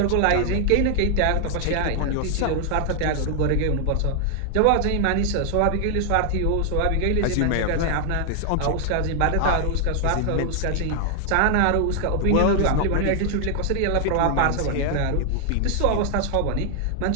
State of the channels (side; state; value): both; different; correlation 0.00